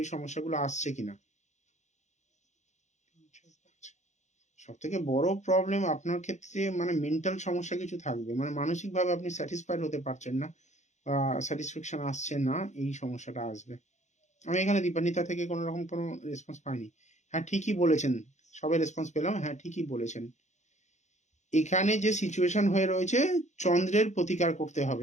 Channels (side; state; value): right; late; 0.34 ms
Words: সমস্যাগুলো আসছে কিনা। সব থেকে বড় প্রবলেম আপনার ক্ষেত্রে মানে মেন্টাল সমস্যা কিছু থাকবে, মানে মানসিকভাবে আপনি স্যাটিসফাইড হতে পারছেন না, বা স্যাটিসফ্যাকশন আসছে না, এই সমস্যাটা আসবে। আমি এখানে দীপান্বিতা থেকে কোনো রকম কোনো রেসপন্স পাইনি। হ্যাঁ, ঠিকই বলেছেন, সবে রেসপন্স পেলাম, হ্যাঁ ঠিকই বলেছেন। এখানে যে সিচুয়েশন হয়ে রয়েছে, চন্দ্রের প্রতিকার করতে